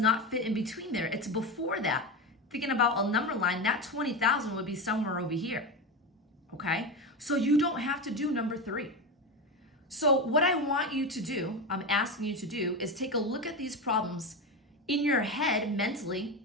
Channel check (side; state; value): both; normal; correlation 0.19